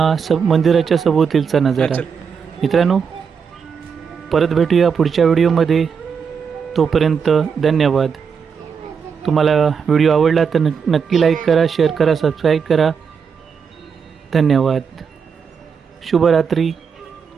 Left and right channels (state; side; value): quieter; left; 6.3 dB